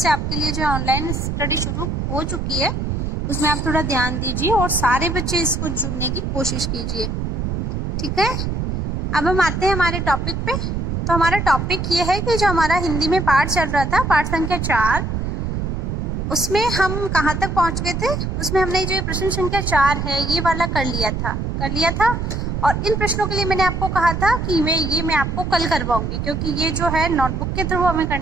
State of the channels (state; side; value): noise; right; rumble, 2 dB below the sound